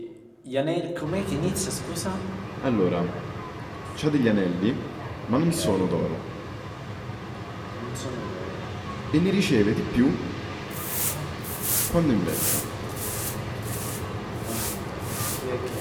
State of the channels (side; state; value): both; identical; correlation 1.00